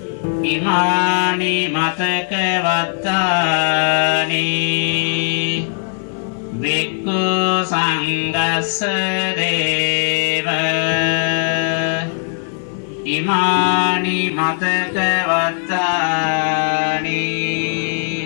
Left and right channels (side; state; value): right; silent; 67 dB below the other